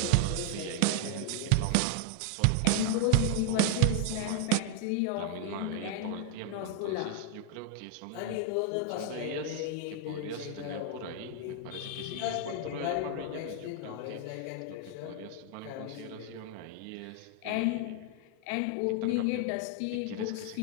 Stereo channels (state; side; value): different; both; correlation 0.00